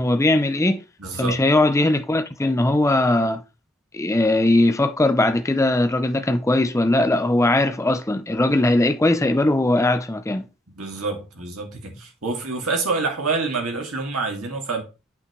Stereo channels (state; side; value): normal; both; correlation 0.74